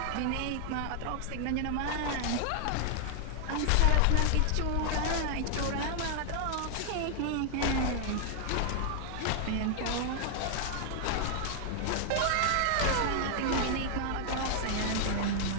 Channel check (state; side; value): different; both; correlation 0.00